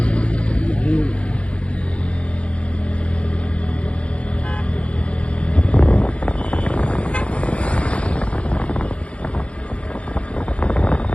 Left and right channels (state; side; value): late; right; 0.061 ms